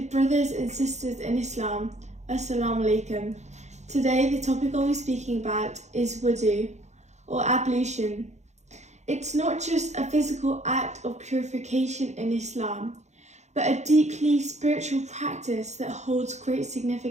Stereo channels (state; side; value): late; left; 0.33 ms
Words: brothers and sisters in Islam, Assalamu alaikum. Today the topic I'll be speaking about is wudu, or ablution. It's not just a physical act of purification in Islam, but a deeply spiritual practice that holds great